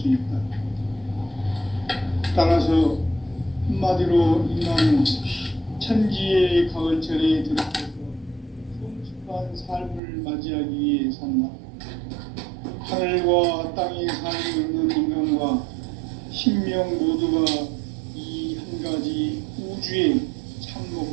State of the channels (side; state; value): left; drops out; at 10.0 s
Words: 있다. 따라서 한마디로 인간은 천지의 가을철에 들어서서 성숙한 삶을 맞이하기 위해 산다. 하늘과 땅에 살고 있는 인간과 신명 모두가 이 한 가지 우주의 참